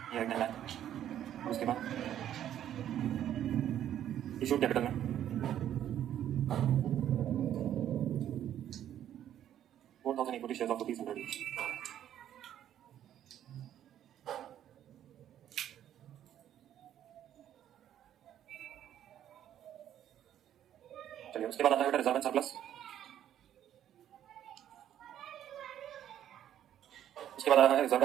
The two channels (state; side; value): quieter; left; 10.9 dB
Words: ये है 10 लाख. और उसके बाद इशू कैपिटल में 4,000 equity shares of rupees 100 each. चलिए उसके बाद आता है बेटा रिजर्व एंड सरप्लस. उसके बाद आता है रिजर्व